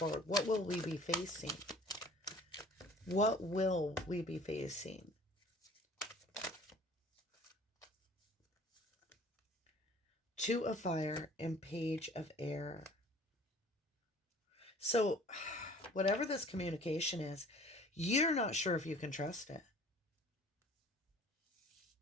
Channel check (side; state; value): both; normal; correlation 0.50